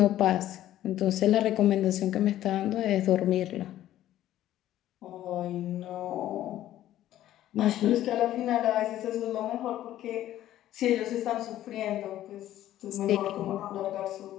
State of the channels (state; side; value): quieter; right; 13.1 dB